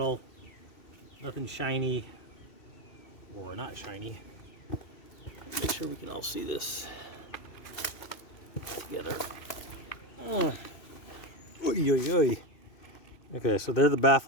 nothing shiny or not shiny. Make sure we can all see this together. Oy, oy, oy. Okay, so they're the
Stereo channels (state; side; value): late; right; 2.6 ms